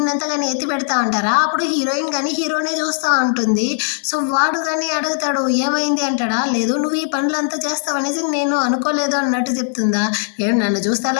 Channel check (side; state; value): right; silent; digital silence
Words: అంతా కానీ ఎత్తి పెడతా ఉంటారా. అప్పుడు హీరోయిన్ కానీ హీరోనే చూస్తూ ఉంటుంది. సో వాడు కానీ అడుగుతాడు ఏమైంది అంటాడా. లేదు నువ్వు ఈ పనులు అంతా చేస్తావనేసి నేను అనుకోలేదు అన్నట్టు చెప్తుందా. చేయబడుతుందా, ఏం నన్ను చూస్తే